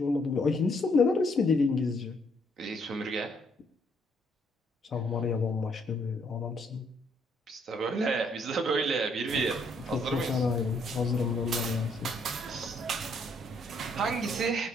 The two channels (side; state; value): both; normal; correlation 0.70